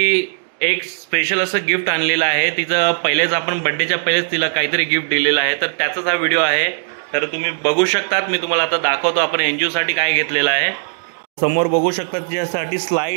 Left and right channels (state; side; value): silent; left; digital silence